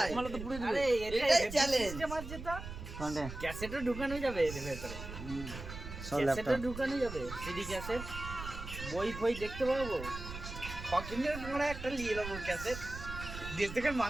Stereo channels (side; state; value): right; noise; rumble, 10 dB below the sound